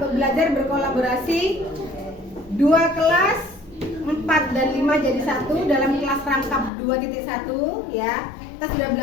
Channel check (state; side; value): drops out; right; at 6.7 s